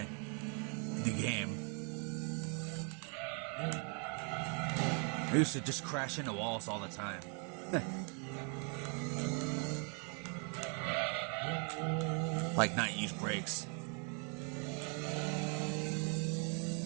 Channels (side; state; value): left; quieter; 38.9 dB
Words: The game. I used to just crash into walls all the time. Like not use brakes.